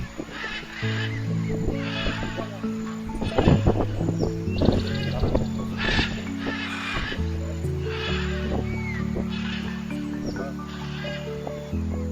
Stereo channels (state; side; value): identical; both; correlation 1.00